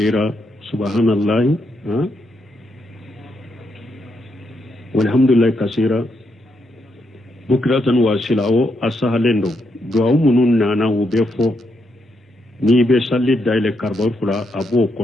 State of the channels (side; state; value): both; normal; correlation 0.80